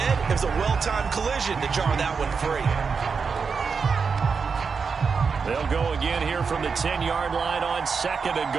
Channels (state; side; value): quieter; left; 5.5 dB